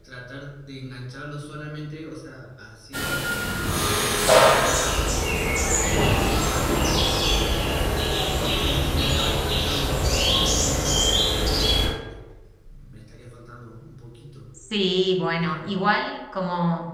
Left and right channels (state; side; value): identical; both; correlation 1.00